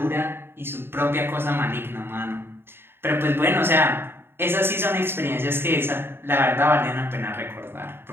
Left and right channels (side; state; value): left; late; 0.11 ms